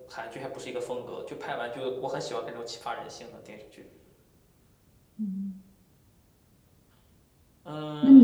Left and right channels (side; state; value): both; identical; correlation 1.00